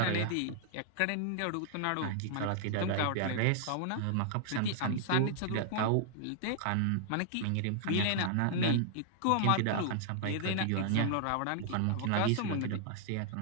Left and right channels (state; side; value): different; both; correlation -0.01